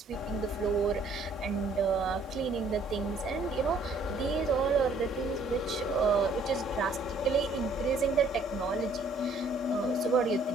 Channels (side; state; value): left; quieter; 3.1 dB